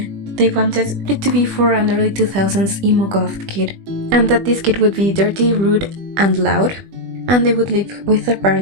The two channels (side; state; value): left; late; 20 ms